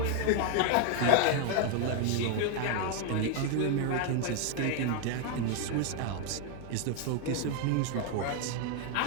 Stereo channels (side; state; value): both; different; correlation 0.01